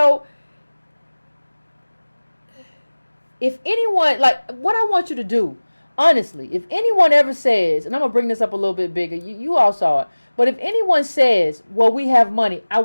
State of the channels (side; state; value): both; inverted; correlation -1.00